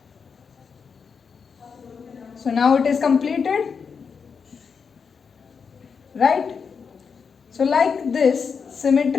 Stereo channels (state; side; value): quieter; right; 5.9 dB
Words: So now it is completed, right? So like this,